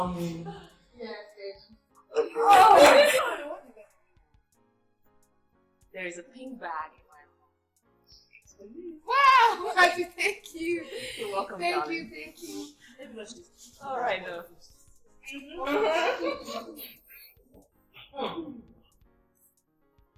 There is a pink bag in my room. Wow! Thank you. You're welcome, Thank darling. you. All right, though.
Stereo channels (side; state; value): both; identical; correlation 1.00